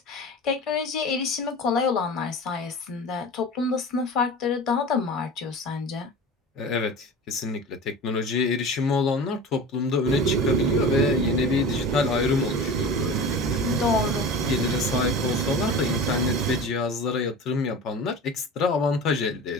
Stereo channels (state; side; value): normal; both; correlation 0.33